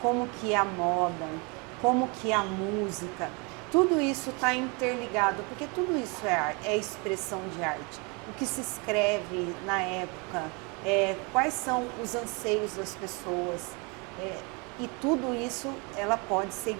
que a moda, como que a música, tudo isso está interligado, porque tudo isso é expressão de arte. O que se escreve na época, quais são os anseios das pessoas, e tudo isso ela pode ser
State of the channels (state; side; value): quieter; left; 30.7 dB